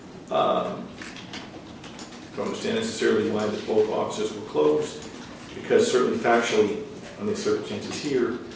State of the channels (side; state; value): both; identical; correlation 1.00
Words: don't understand necessarily why both offices were closed, because certainly factually, under the circumstances here,